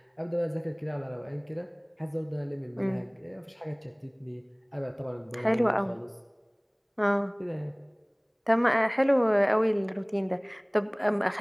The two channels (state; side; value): identical; both; correlation 1.00